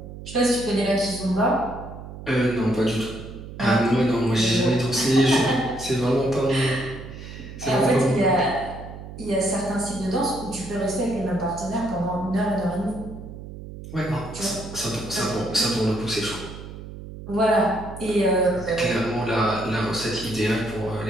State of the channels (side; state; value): right; noise; hum, 12 dB below the sound